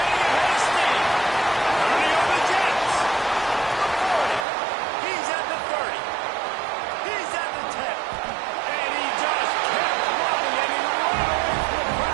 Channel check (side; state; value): left; drops out; at 4.5 s